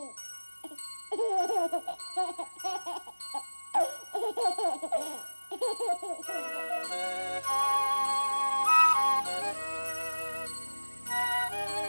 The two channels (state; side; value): inverted; both; correlation -1.00